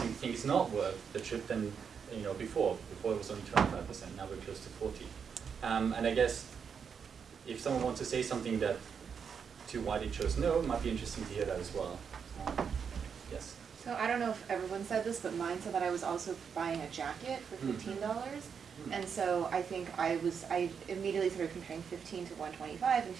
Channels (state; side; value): quieter; left; 6.7 dB